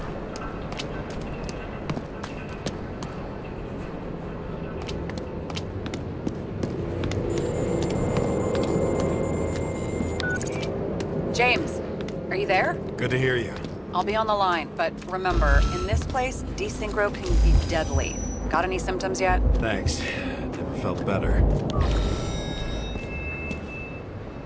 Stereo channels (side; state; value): both; identical; correlation 1.00